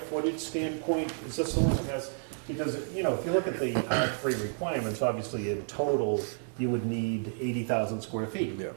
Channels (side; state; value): left; silent; 57 dB below the other